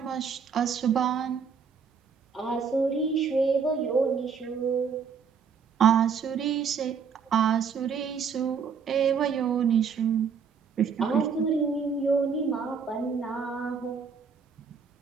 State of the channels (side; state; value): left; quieter; 6.2 dB